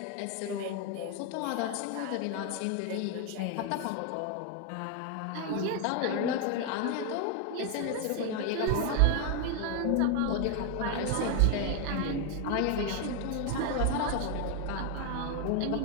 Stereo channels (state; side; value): different; both; correlation 0.01